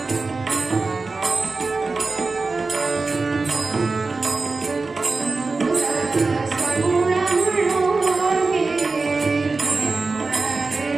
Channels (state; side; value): quieter; left; 3.9 dB